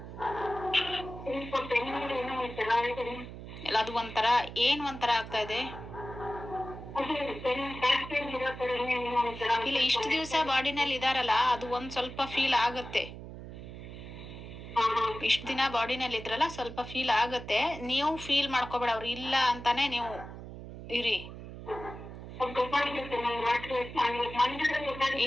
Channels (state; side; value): noise; right; hum, 12 dB below the sound